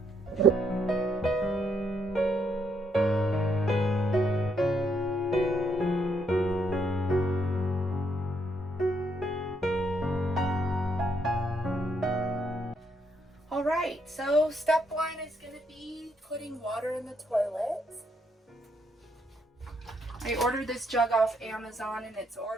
Alright, so step 1 is going to be putting water in the toilet. I ordered this jug off Amazon and it's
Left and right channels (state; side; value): normal; both; correlation 0.74